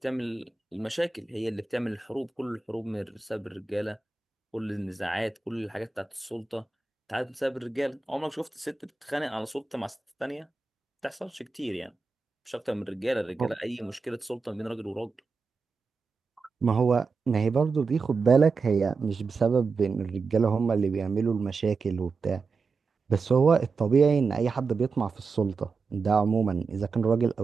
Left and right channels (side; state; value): left; quieter; 4.5 dB